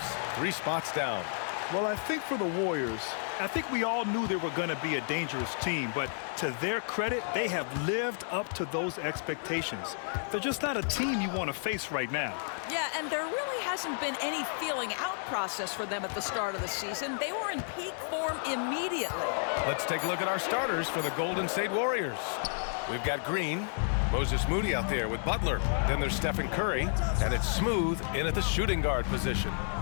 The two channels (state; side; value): silent; right; digital silence